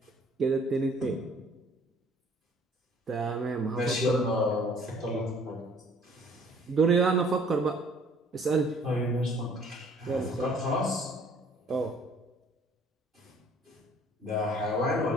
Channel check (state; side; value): normal; both; correlation 0.56